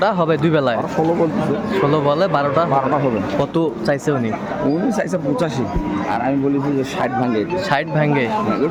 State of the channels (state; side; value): identical; both; correlation 1.00